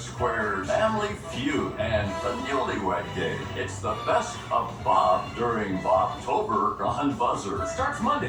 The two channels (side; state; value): both; identical; correlation 1.00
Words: Squares, Family Feud, and the Newlywed Game. It's the best of Bob during Bobtober on BUZZR. Starts